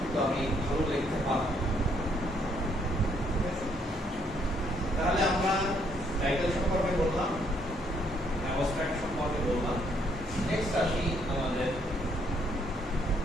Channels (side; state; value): both; normal; correlation 0.69